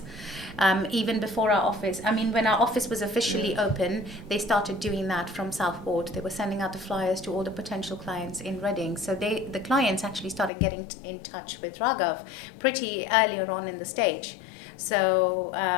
Even before our office. I mean, when our office was officially open, they started doing that from Southport. They were sending out the flyers to all the potential clients in Reading. So the clients actually started getting in touch with Raghav pretty earlier on in the stage. So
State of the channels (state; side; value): drops out; right; at 10.5 s